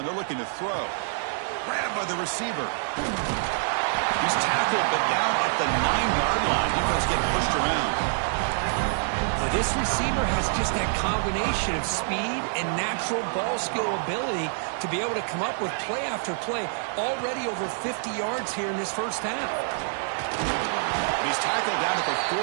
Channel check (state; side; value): silent; left; digital silence